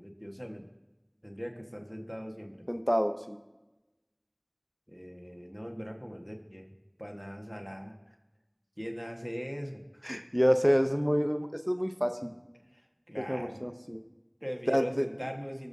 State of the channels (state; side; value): identical; both; correlation 1.00